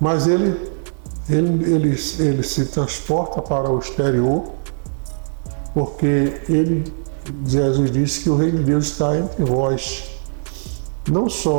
mas ele se transporta para o exterior, porque Jesus disse que o reino de Deus está entre vós, não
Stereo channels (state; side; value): silent; left; 66 dB below the other